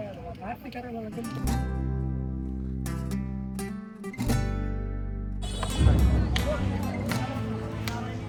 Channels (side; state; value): both; identical; correlation 1.00